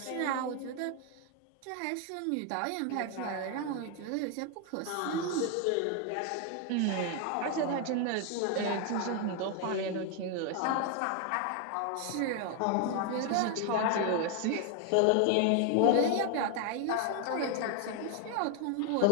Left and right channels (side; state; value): both; different; correlation 0.01